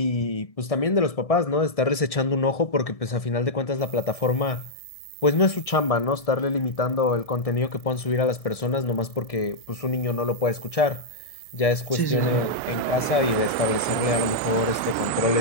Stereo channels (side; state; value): right; late; 1.6 ms